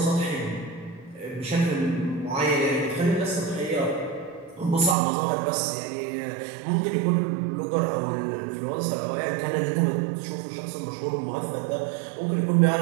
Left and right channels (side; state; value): left; drops out; at 5.0 s